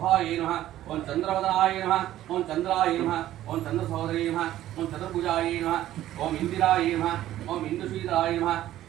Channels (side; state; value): left; quieter; 13.5 dB